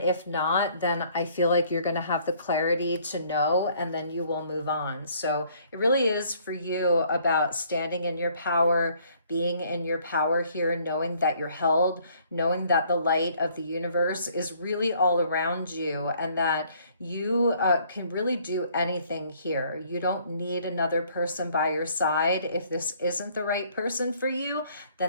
not, then I feel like you're going to have the clarity to know, and then you will move on. So it really is for you about standing in your power, being in your power here, knowing that you're held, knowing that the light of the universe is really all around you, and that you can really do anything here. You don't need another person by your side. If this isn't the right person for you,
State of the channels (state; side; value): inverted; both; correlation -0.61